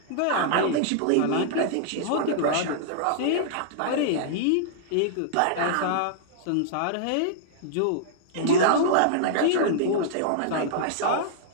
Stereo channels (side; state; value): both; different; correlation -0.02